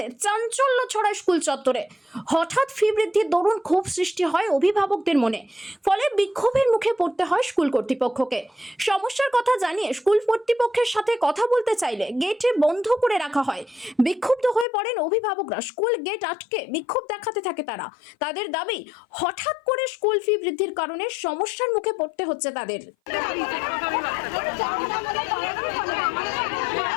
চাঞ্চল্য ছড়ায় স্কুল চত্বরে। হঠাৎ ফি বৃদ্ধির দরুন ক্ষোভ সৃষ্টি হয় অভিভাবকদের মনে, ফলে বিক্ষোভের মুখে পড়তে হয় স্কুল কর্তৃপক্ষকে। সমস্যার কথা জানিয়ে স্কুল কর্তৃপক্ষের সাথে কথা বলতে চাইলে গেটে বন্ধ করে রাখা হয়। বিক্ষুব্ধ হয়ে পড়েন অভিভাবকরা, স্কুল গেট আটকে বিক্ষোভ দেখাতে থাকে তারা। তাদের দাবি, হঠাৎ করে স্কুল ফি বৃদ্ধির কারণে সমস্যার মুখে পড়তে হচ্ছে তাদের।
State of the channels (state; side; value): drops out; right; at 14.7 s